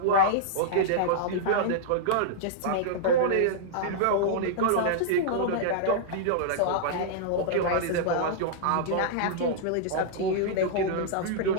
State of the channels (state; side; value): different; both; correlation -0.02